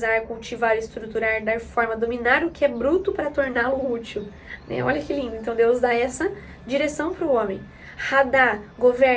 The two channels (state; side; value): identical; both; correlation 1.00